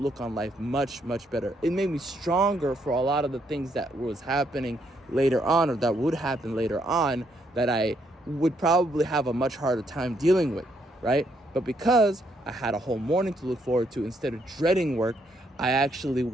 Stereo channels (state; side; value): normal; both; correlation 0.74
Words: on life much, much better. It made me stronger for a lot of the things that was happening later on, or that would happen later on, that I would probably have a much harder time dealing with, right? But because I had a whole morning to look forward to, instead of dreading work, I actually